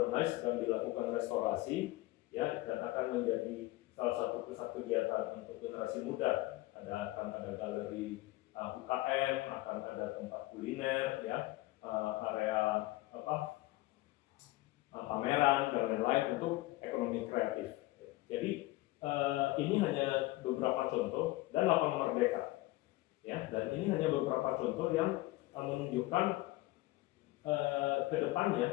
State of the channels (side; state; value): right; quieter; 19.0 dB